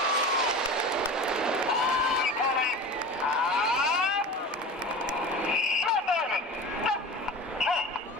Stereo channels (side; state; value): both; normal; correlation 0.33